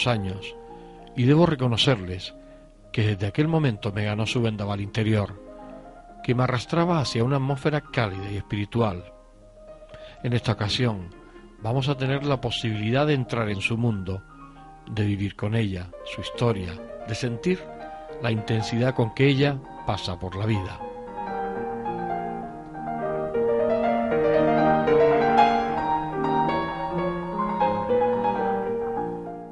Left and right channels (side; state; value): both; identical; correlation 1.00